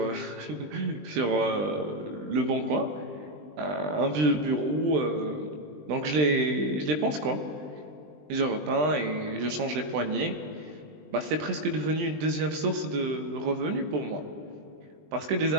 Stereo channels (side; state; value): left; late; 20 ms